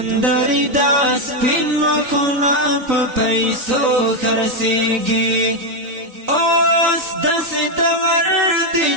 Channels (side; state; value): left; late; 3.9 ms